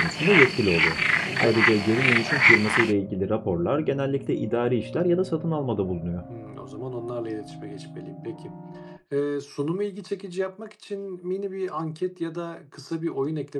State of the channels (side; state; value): both; identical; correlation 1.00